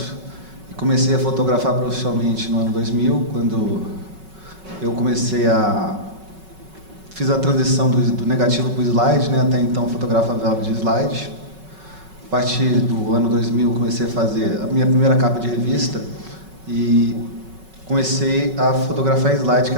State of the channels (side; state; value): left; late; 5.4 ms